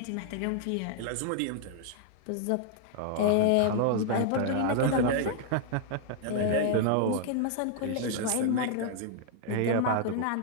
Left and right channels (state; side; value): different; both; correlation 0.00